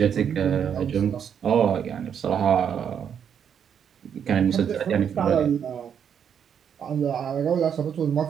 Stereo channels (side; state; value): left; quieter; 8.1 dB